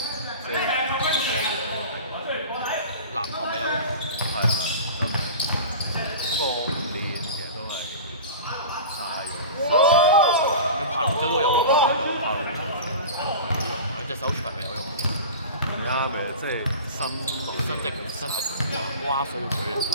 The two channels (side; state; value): both; inverted; correlation -0.34